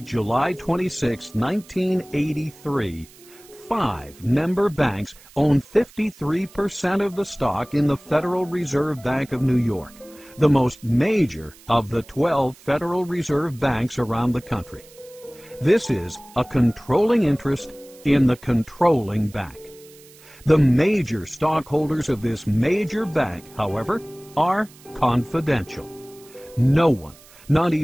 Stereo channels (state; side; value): noise; right; hiss, 24 dB below the sound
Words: 26, 1983, 5 member banks own 53% of the stock in the Federal Reserve Bank of New York, the most major of the 12 Federal Reserve banks around the country. This is a controlling interest in the controlling bank. The major stockholders of this major bank, however, are confidential. No one, not